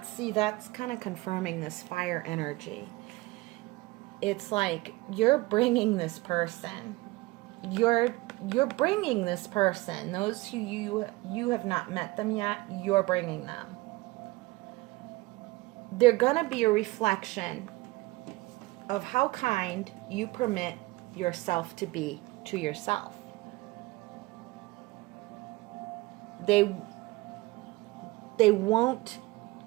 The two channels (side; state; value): left; quieter; 21.3 dB